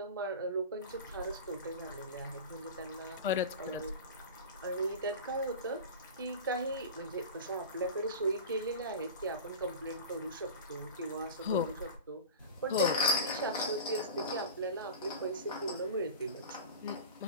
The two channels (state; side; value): inverted; both; correlation -0.30